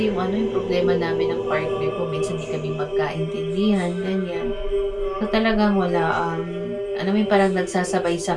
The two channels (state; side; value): identical; both; correlation 1.00